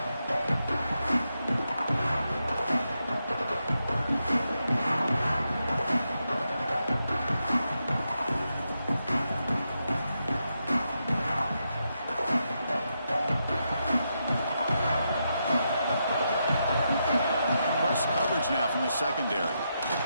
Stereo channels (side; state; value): both; inverted; correlation -0.84